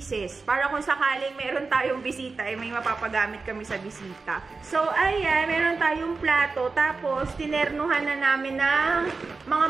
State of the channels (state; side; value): quieter; left; 4.2 dB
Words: Para kung sakaling meron tayong bisita, may mapapagamit kami sa bisita. So, ayan, meron tayong plato. Tapos, tinernuhan na namin ng mga